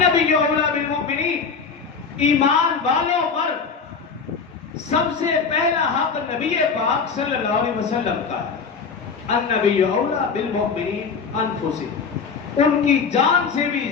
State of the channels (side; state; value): right; quieter; 5.5 dB